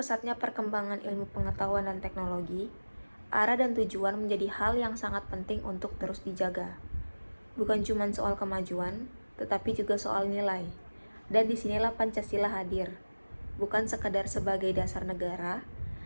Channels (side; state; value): both; inverted; correlation -1.00